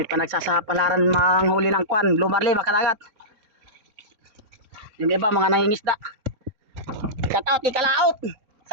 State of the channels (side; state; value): left; late; 4.0 ms